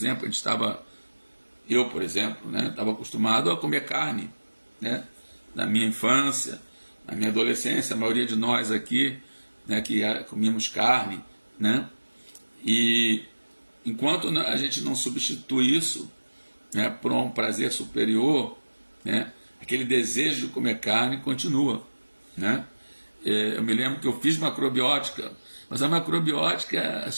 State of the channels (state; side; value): inverted; both; correlation -1.00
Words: eu, por exemplo, né, estava acostumado a comer carne, né, na minha infância, na minha adolescência, a maioria de nós aqui, né, que comíamos carne, né, e enquanto a gente não substitui isso, né, por um prazer superior, né, aquele desejo de comer carne continua, né. Eu me lembro que eu fiz macrobiótica, mas a macrobiótica, as